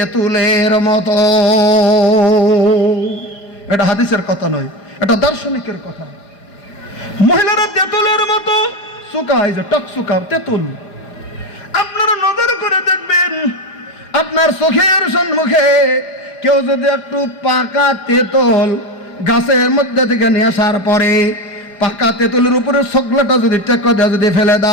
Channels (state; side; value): late; right; 5.2 ms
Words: মতো। এটা হাদিসের কথা নয়, এটা দার্শনিকের কথা। মহিলারা তেঁতুলের মতো শুকায়, যে টক শুকা তেঁতুল। আপনারা নজর করে দেখবেন, আপনার চোখের সম্মুখে কেউ যদি একটু পাকা তেঁতুল গাছের মধ্যে থেকে নিয়ে আসার পরে পাকা তেঁতুলের উপরে শকলাটা যদি টেক্কা দিয়ে যদি ফেলে